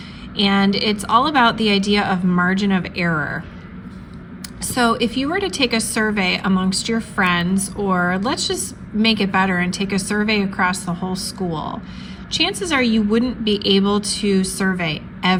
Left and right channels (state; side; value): identical; both; correlation 1.00